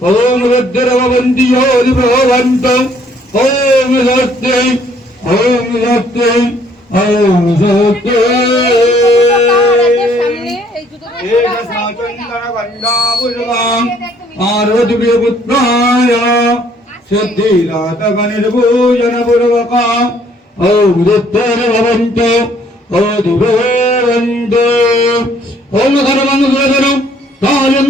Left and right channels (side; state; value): both; normal; correlation 0.63